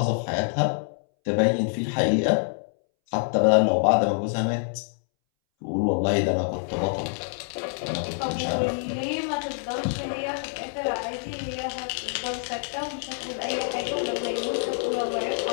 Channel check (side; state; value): right; silent; 61 dB below the other